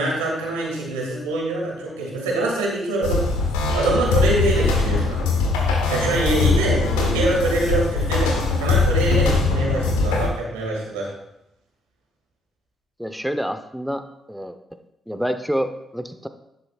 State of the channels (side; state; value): both; normal; correlation 0.61